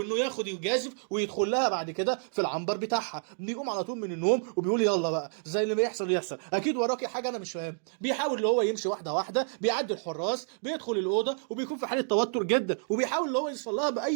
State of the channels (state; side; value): silent; left; 58 dB below the other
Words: ياخد يجازف ويدخل لها بعد كده في العنبر بتاعها. بيقوم على طول من النوم وبيقول يلا بقى زي اللي بيحصل يحصل، اكيد وراكي حاجه انا مش فاهم. بيحاول اللي هو يمشي واحده واحده، بيعدي الحراس، بيدخل الاوضه وبيكون في حاله توتر جدا، وبيحاول اللي هو يوصل لها